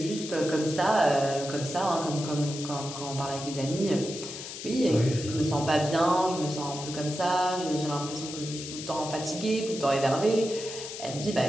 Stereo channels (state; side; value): noise; left; hiss, 9 dB below the sound